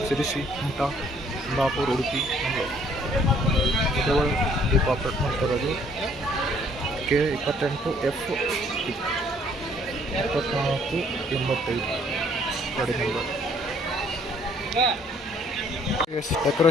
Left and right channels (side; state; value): both; normal; correlation 0.62